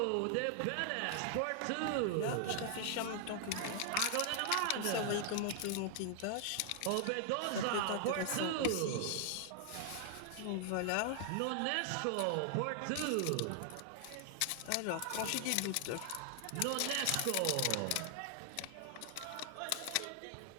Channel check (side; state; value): both; different; correlation 0.00